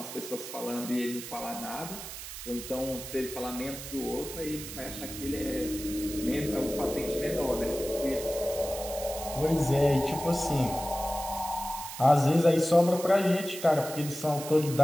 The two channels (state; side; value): noise; right; hiss, 10 dB below the sound